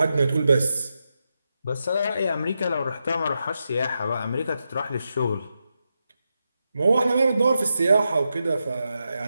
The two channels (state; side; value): inverted; both; correlation -0.87